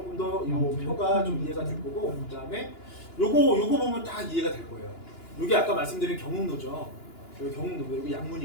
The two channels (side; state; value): right; late; 2.9 ms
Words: 더 이 표가 좀 이해가 될 거고, 그 다음에 요거 보면 다 이해가 될 거예요. 요게 아까 말씀드린 경운로죠. 여기 경운로, 여기